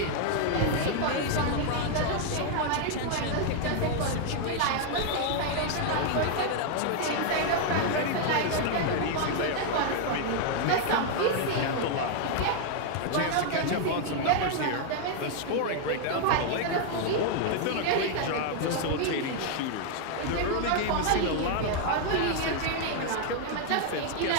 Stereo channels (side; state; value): both; different; correlation 0.00